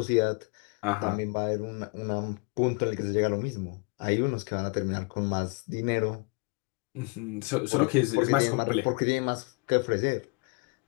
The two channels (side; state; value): right; quieter; 31.7 dB